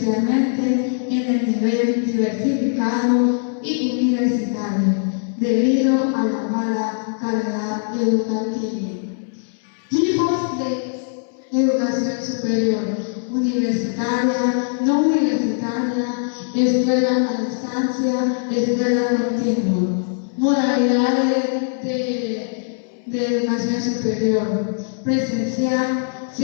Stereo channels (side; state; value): right; silent; 65 dB below the other